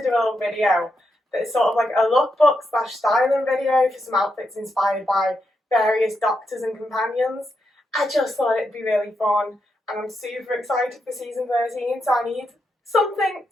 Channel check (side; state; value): both; normal; correlation 0.83